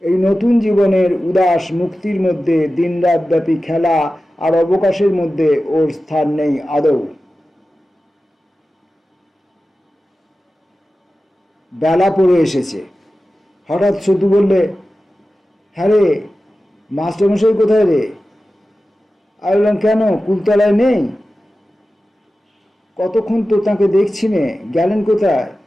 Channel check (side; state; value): both; normal; correlation 0.94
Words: এই নতুন জীবনের উদাস মুক্তির মধ্যে দিনরাতব্যাপী খেলা আর অবকাশের মধ্যে ওর স্থান নেই আদৌ। বেলা পড়ে এসেছে। হঠাৎ সতু বললে, হ্যাঁ রে, মাস্টারমশাই কোথায় রে? আমি বললাম, কেন, কুলতলায় নেই? কতক্ষণ তো তাকে দেখছি নে, গেলেন কোথায়?